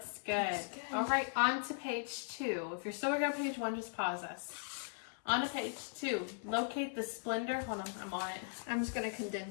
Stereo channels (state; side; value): silent; right; 52 dB below the other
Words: good. Looks good. All right, on to page 2. If you're still working on page 1, just pause us. On to page 2. Locate the Splendor. Hold on, I'm on it. I'm just going to